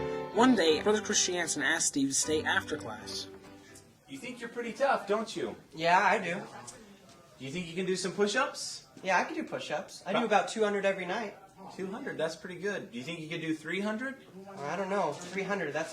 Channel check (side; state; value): both; identical; correlation 1.00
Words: One day, Brother Christiansen asked Steve to stay after class. You think you're pretty tough, don't you? Yeah, I do. Do you think you can do some push-ups? Yeah, I can do push-ups. I do about 200 every night. 200, that's pretty good. Do you think you could do 300? I don't know. 300, that's